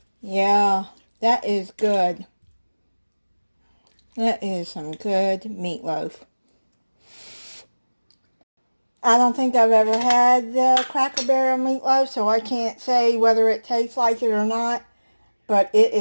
Yeah, that is good. That is some good meatloaf. I don't think I've ever had the Cracker Barrel meatloaf, so I can't say whether it tastes like it or not, but it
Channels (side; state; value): both; inverted; correlation -1.00